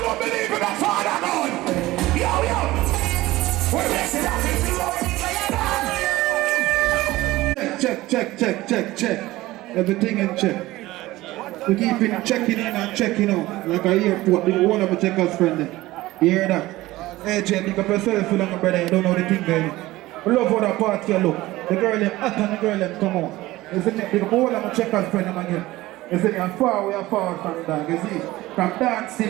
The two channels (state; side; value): quieter; left; 17.9 dB